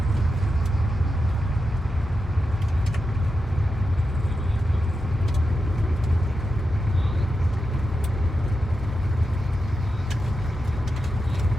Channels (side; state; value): both; normal; correlation 0.89